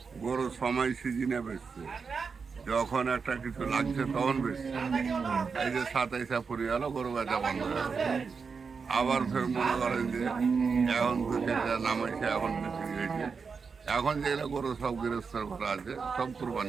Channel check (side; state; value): left; quieter; 5.3 dB